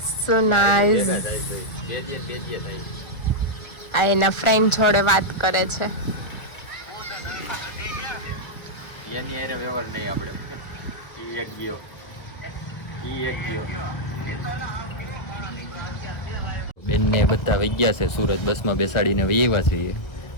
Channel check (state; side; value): late; right; 1.4 ms